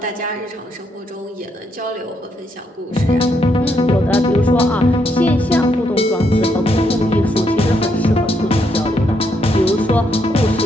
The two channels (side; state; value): both; normal; correlation 0.76